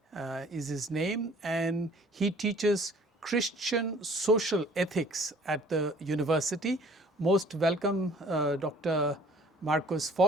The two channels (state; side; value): normal; both; correlation 0.53